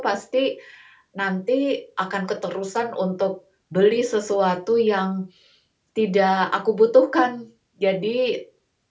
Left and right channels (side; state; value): both; identical; correlation 1.00